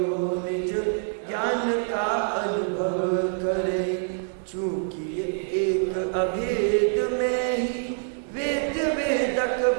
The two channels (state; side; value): silent; left; digital silence